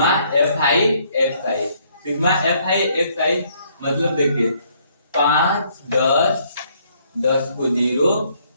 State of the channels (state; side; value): inverted; both; correlation -0.67